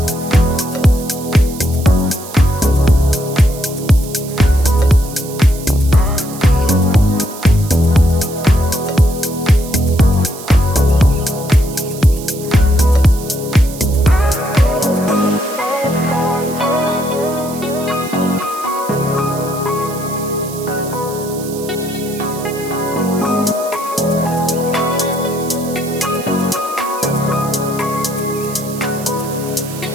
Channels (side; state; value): right; noise; hiss, 14 dB below the sound